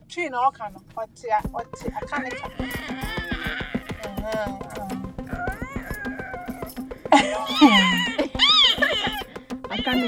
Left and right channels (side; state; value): both; identical; correlation 1.00